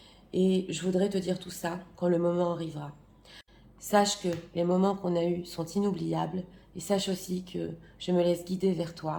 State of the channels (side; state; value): both; identical; correlation 1.00